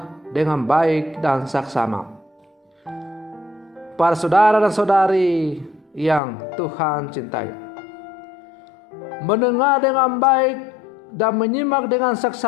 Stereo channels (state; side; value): drops out; right; at 6.2 s